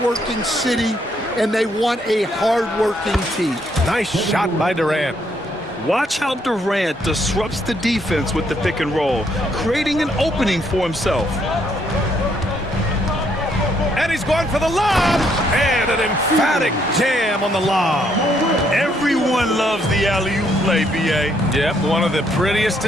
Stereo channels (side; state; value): both; normal; correlation 0.71